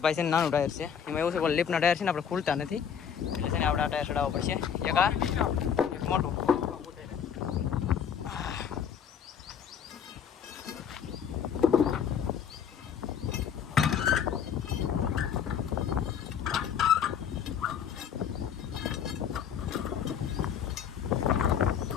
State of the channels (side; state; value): right; quieter; 8.0 dB